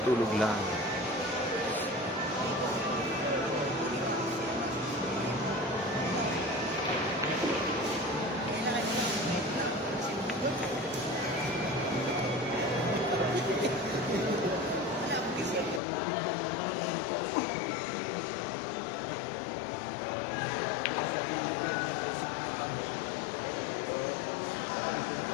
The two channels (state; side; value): drops out; right; at 15.8 s